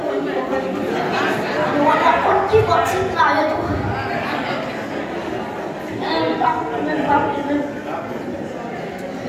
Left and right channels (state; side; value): identical; both; correlation 1.00